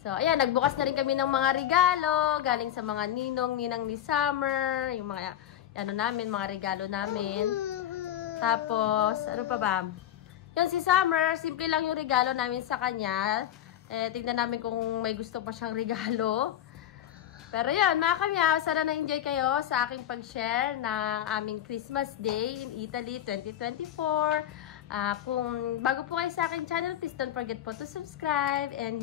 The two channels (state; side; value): quieter; right; 11.4 dB